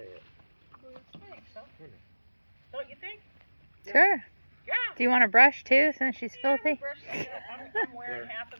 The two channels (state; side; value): inverted; both; correlation -1.00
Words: it. I think so. Don't you think? Sure. Yeah. Do you want to brush too, since she's Yeah, filthy? I'm wearing half